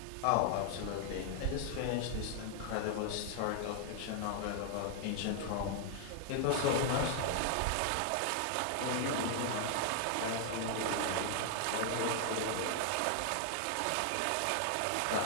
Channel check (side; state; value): both; different; correlation 0.00